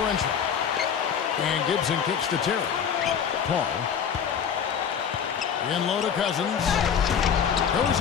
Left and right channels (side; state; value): right; quieter; 7.6 dB